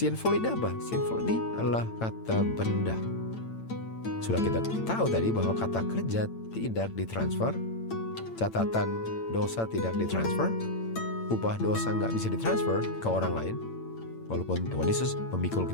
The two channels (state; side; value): late; right; 8.9 ms